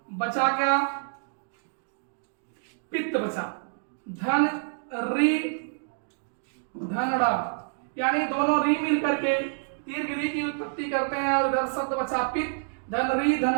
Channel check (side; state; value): left; silent; digital silence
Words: बचा क्या? पित्त बचा। धन री धनड़ा, यानी दोनों री मिल करके दीर्घ री की उत्पत्ति करते हैं और इधर शब्द बचा पित्त, धन री